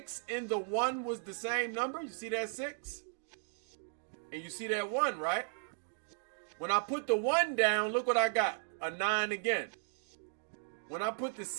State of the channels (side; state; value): left; silent; digital silence